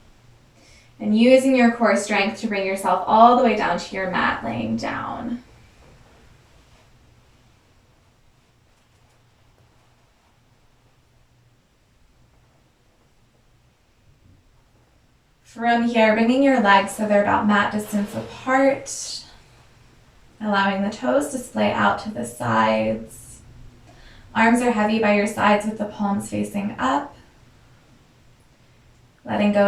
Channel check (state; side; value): identical; both; correlation 1.00